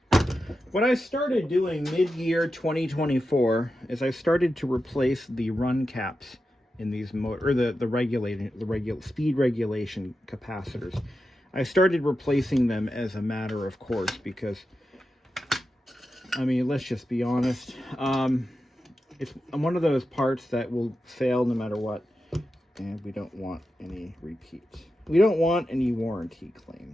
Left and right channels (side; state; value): both; normal; correlation 0.90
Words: What I started doing mid-year 2024 is I started to replace the run caps in these the speed regulation capacitors. I started replacing them as a matter of course because, I mean, let's just be honest. It's one of those parts that will fail no matter what, and we don't want any repeats. We don't want any warranty